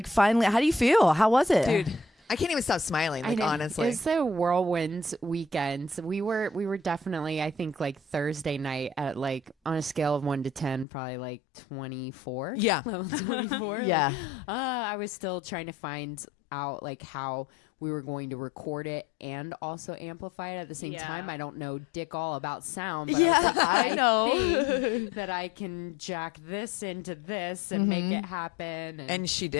finally. How do you feel? How was it? Dude, I can't even stop smiling, like, honestly. It was a whirlwind weekend. So we were definitely, I think, like Thursday night at like on a scale of 1 to 10, probably like 24. Yeah. Level 24. Yeah. Like, I was still trying to find out like how we were going to record it and also amplify it at the same time. I don't know dick all about sound, but I was like, I know. think that I can jack this into this and make it happen. And she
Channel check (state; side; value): drops out; right; at 10.9 s